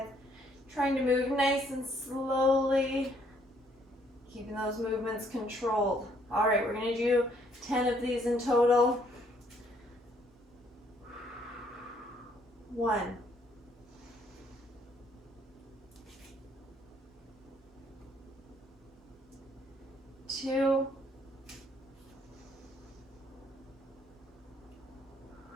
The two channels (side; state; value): both; normal; correlation 0.67